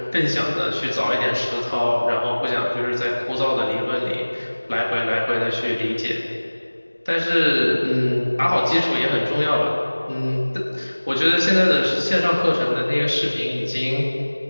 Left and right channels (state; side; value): inverted; both; correlation -1.00